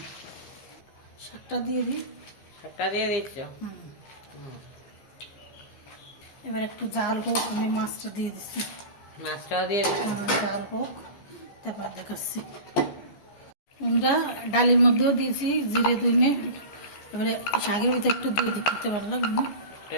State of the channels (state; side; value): late; right; 14 ms